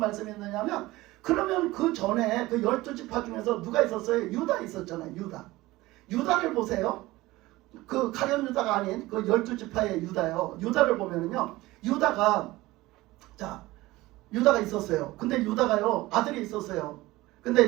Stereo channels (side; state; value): left; quieter; 18.9 dB